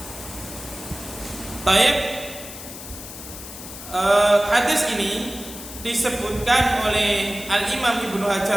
Taib, hadis ini disebutkan oleh Al-Imam Ibnu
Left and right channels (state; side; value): noise; left; hiss, 12 dB below the sound